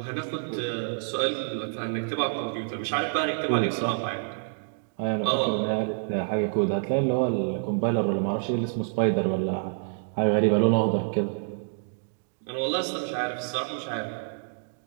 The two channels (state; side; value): silent; left; digital silence